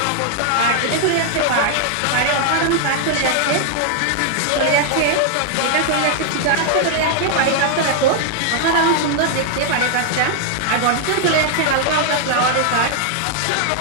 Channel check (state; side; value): different; both; correlation 0.00